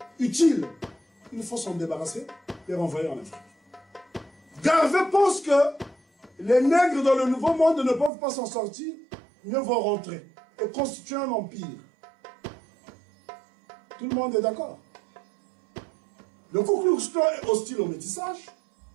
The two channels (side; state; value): left; drops out; at 8.1 s